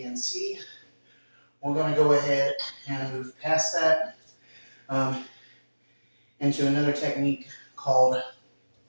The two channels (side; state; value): both; inverted; correlation -1.00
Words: and C. We're going to go ahead and move past that into another technique called,